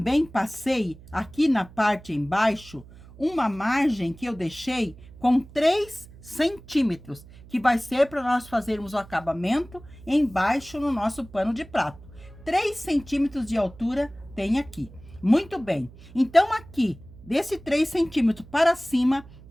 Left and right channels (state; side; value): noise; right; hum, 20 dB below the sound